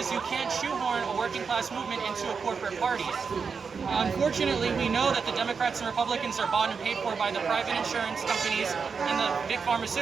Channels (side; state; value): left; quieter; 5.5 dB